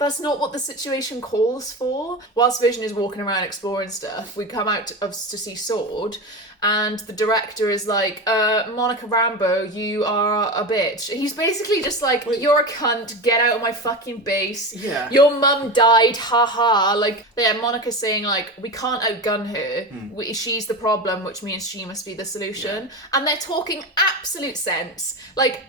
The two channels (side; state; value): both; normal; correlation 0.24